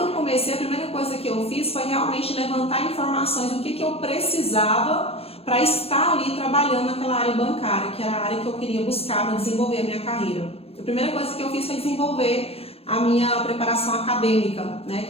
eu comecei, a primeira coisa que eu fiz foi realmente levantar informações do que eu precisava para estar ali trabalhando naquela área bancária, que era a área que eu queria buscar para desenvolver a minha carreira. A primeira coisa que eu fiz foi desenvolver a minha preparação acadêmica, né,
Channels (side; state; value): right; late; 0.28 ms